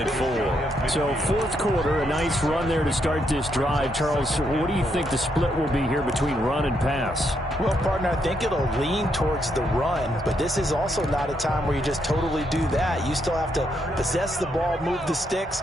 and 4. So fourth quarter, a nice run there to start this drive. Charles, what do you think the split will be here between run and pass? Well, partner, I think it'll lean towards the run, but this is also not a time where you just totally do that. You still have to possess the ball, move the sticks,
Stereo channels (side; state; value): both; normal; correlation 0.77